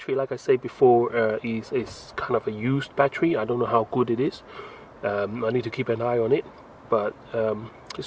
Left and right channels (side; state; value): both; identical; correlation 1.00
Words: like I said before, is kind of a used battery. I don't know how good it is. I need to keep an eye on it, but